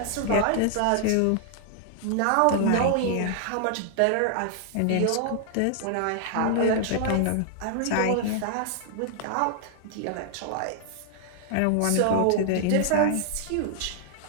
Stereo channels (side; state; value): both; different; correlation 0.00